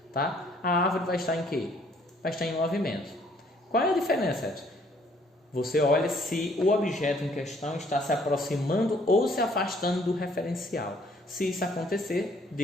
tá? A árvore vai estar em quê? Vai estar em movimento. Qual é a diferença, Edson? Você olha se o objeto em questão está se aproximando ou se afastando do referencial. Se isso acontecer,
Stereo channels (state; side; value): normal; both; correlation 0.63